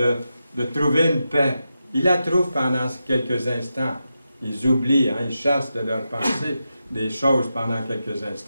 trouver une paix. Ils la trouvent pendant quelques instants. Ils oublient, hein, ils chassent de leur pensée des choses pendant quelques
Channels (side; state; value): both; inverted; correlation -0.89